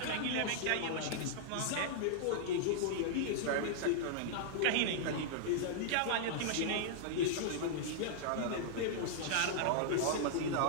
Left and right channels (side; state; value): both; different; correlation -0.01